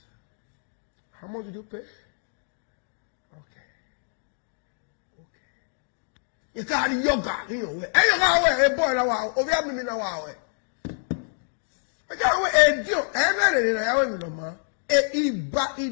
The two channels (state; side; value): silent; right; 60 dB below the other